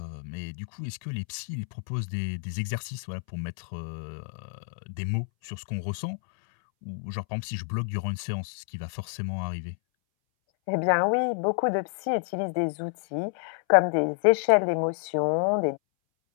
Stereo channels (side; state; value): right; silent; 59 dB below the other